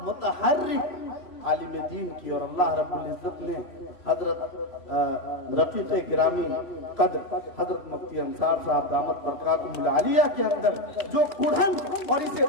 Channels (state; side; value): late; right; 3.0 ms